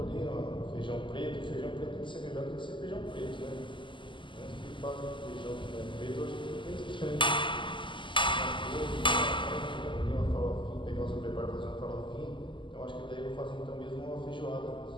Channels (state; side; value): late; right; 0.24 ms